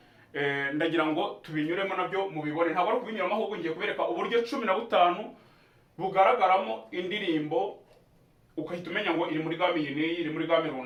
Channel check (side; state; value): both; identical; correlation 1.00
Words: ndagira ngo tubinyuremo nabyo mubibone. Ntabwo ari kubinyuramo, ahubwo ngiye kubereka uburyo 15 bugaragaramo indirimbo, ukahita umenya ngo iri muri game iyi n'iyi, iri muri game